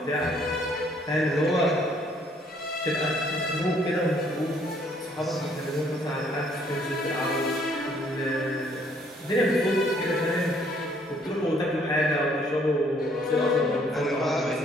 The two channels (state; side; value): normal; both; correlation 0.64